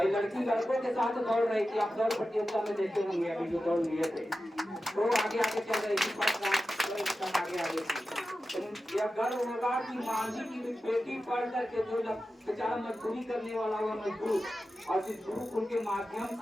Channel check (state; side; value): normal; both; correlation 0.93